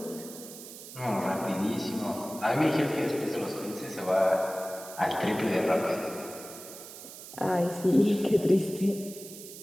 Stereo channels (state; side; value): noise; right; hiss, 14 dB below the sound